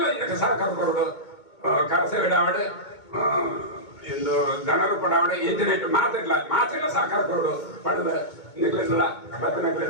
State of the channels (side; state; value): right; late; 2.2 ms